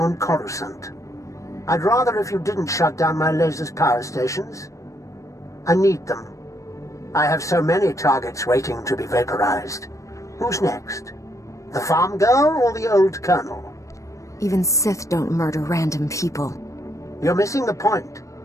Coruscant. I'd rather if you didn't shut down my laser's power stations. I need them. I have so many targets waiting to be vaporized. Who's next? The farm girl or the old colonel? Even Sith don't murder random people. You're missing the point.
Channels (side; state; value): right; late; 0.15 ms